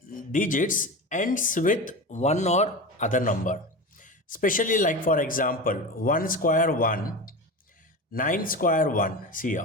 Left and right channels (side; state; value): both; normal; correlation 0.27